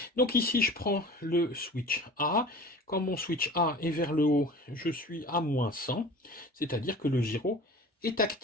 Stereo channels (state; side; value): normal; both; correlation 0.40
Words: Donc ici, je prends le switch A. Quand mon switch A est vers le haut, je suis à moins 100, c'est-à-dire que le gyro est